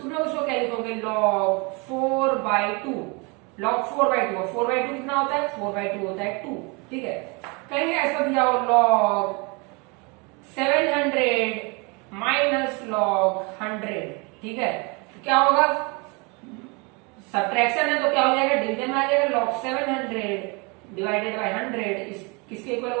लोग उसको क्या लिखोगे, log 4 by 2। Log 4 by 2, 4 by 2 कितना होता है, 4 बाई 2 होता है 2। ठीक है, कहीं ऐसा दिया हो लॉग 700 माइनस लॉग 100। ठीक है, तो क्या होगा, सब्ट्रैक्शन है तो क्या हो जाएगा, डिवीजन में आ जाएगा, लॉग 700 डिवाइडेड बाई 100 किसके इक्वल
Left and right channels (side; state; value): left; quieter; 30.0 dB